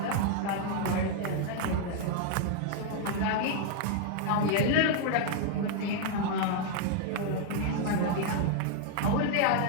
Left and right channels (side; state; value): both; different; correlation 0.00